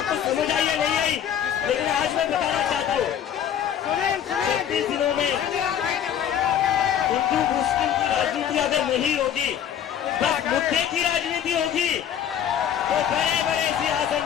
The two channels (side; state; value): right; quieter; 9.4 dB